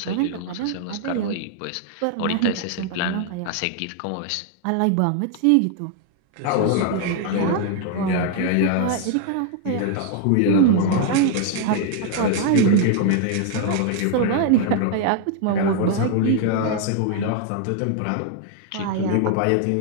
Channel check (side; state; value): both; different; correlation 0.00